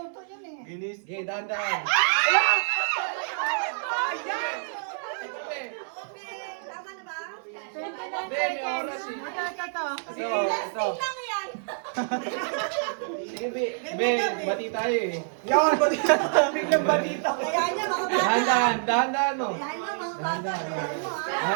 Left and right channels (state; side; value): silent; left; 60 dB below the other